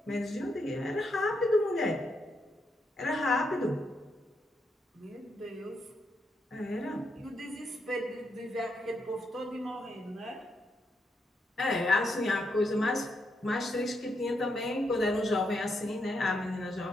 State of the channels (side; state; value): both; normal; correlation 0.80